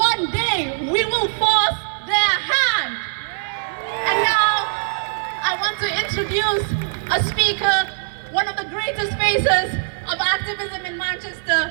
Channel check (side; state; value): left; silent; 56 dB below the other